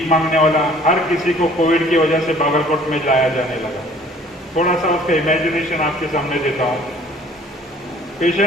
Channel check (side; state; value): both; normal; correlation 0.54